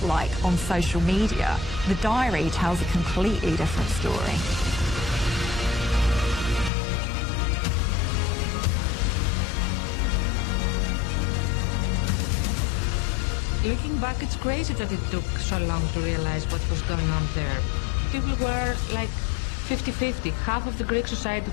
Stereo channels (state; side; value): drops out; right; at 6.7 s